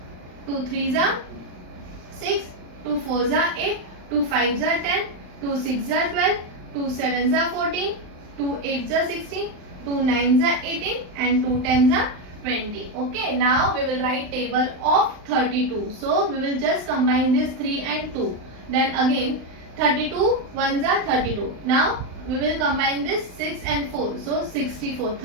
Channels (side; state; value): left; late; 39 ms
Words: 2 3s are 6, 2 4s are 8, 2 5s are 10, 2 6s are 12, 2 7s are 14, 2 8s are 16, 2 9s are 18 and 2 10s are 20. Okay, now we will write table of 32. So we will just combine this 3 and 2. Then again 32 1s are 32. Now we will combine this 6 and 4. So 64.